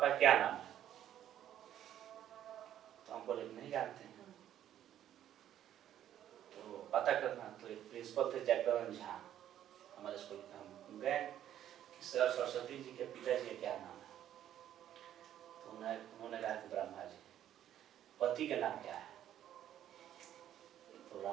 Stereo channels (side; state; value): left; quieter; 11.2 dB